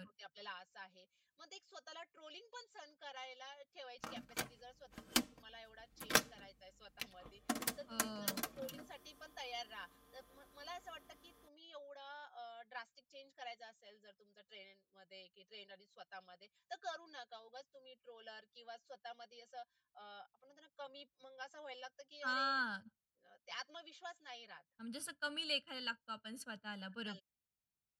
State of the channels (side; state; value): both; identical; correlation 1.00